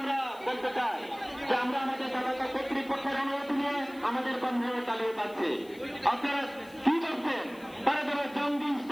বলতে চাই যে আমরা আমাদের সরকার কর্তৃপক্ষের অনুমতি নিয়ে আমাদের কর্মসূচি চালিয়ে যাচ্ছি। আপনারা কি করছেন? তারা যারা জঙ্গি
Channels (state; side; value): noise; left; hiss, 24 dB below the sound